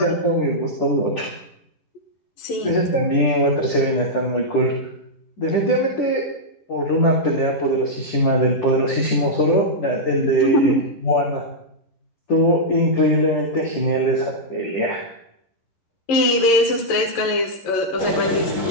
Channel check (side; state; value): right; late; 10 ms